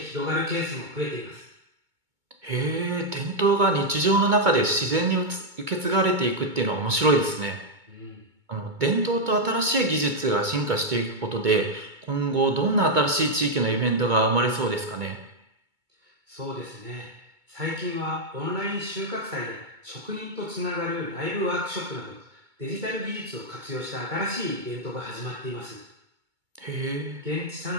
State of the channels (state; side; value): late; left; 2.2 ms